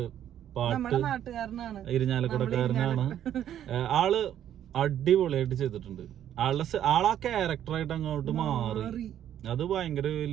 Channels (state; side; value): quieter; left; 10.7 dB